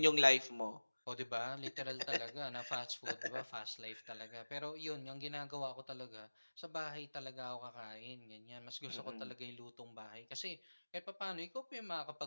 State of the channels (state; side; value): inverted; both; correlation -1.00